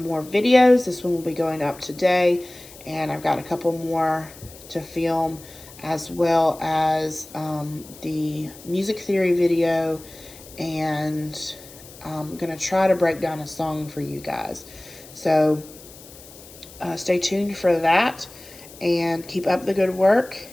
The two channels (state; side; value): noise; left; hiss, 19 dB below the sound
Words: videos. This one will be going up today, and I've got a couple more to film, as well as the music theory video, and I'm going to try to break down a song for you guys. So stay tuned for that, and keep up the good work,